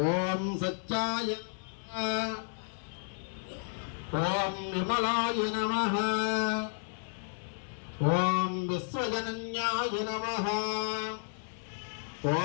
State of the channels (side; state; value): right; silent; 56 dB below the other